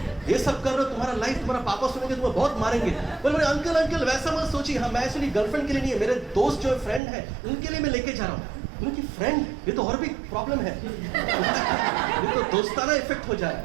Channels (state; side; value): drops out; left; at 7.0 s